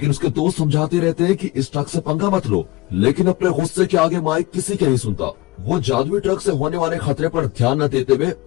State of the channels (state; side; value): quieter; right; 19.2 dB